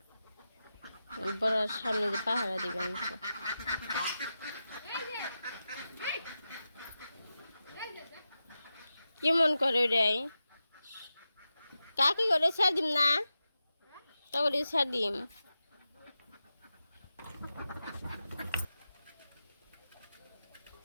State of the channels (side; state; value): both; inverted; correlation -0.91